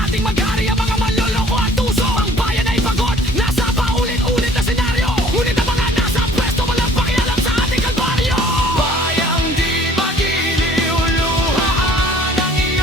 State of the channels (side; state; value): both; normal; correlation 0.54